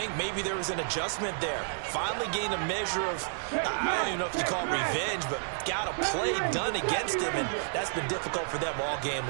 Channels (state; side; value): silent; left; digital silence